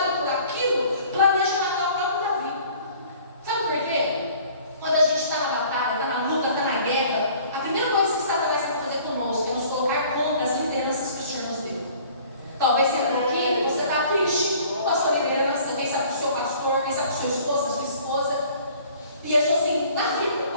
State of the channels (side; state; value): both; inverted; correlation -0.52